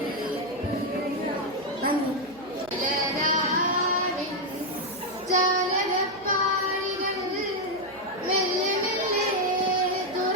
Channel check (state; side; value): noise; right; hum, 24 dB below the sound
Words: നന്ദി. ഇലരാവിൻ ജാലകപ്പാളികൾ മെല്ലെ മെല്ലെ